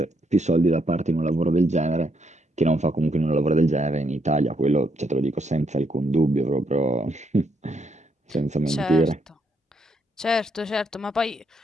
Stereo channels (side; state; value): both; normal; correlation 0.75